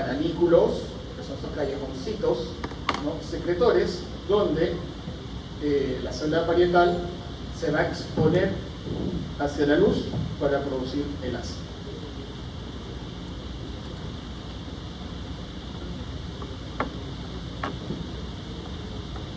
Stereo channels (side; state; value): both; identical; correlation 1.00